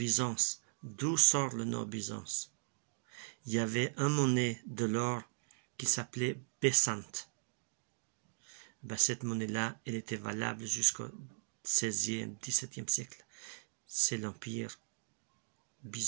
d'où sort le nom Byzance? Il y avait un monnaie de l'or qui s'appelait Bessante. Cette monnaie-là, elle était valable jusqu'au 16e, 17e siècle. C'est l'empire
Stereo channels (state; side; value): silent; left; digital silence